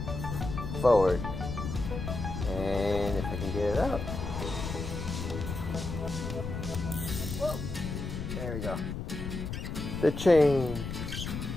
forward, and if I can get it out, whoa, there we go. The chain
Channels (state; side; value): noise; left; rumble, 5 dB below the sound